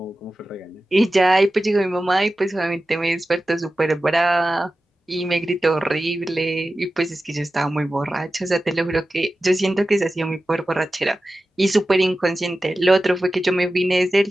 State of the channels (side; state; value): both; normal; correlation 0.94